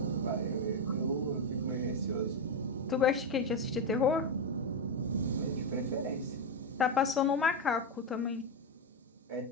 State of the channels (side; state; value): both; normal; correlation 0.08